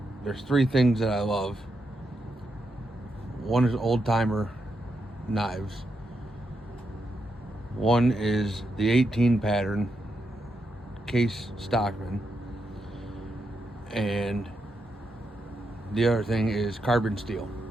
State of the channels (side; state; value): both; normal; correlation 0.83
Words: there's three things that I love. One is old timer knives. One is the 18 pattern Case Stockman. And the other thing is carbon steel.